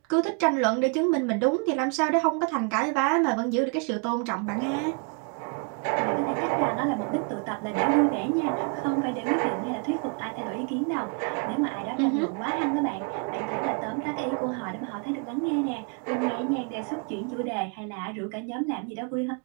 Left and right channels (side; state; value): left; quieter; 37.1 dB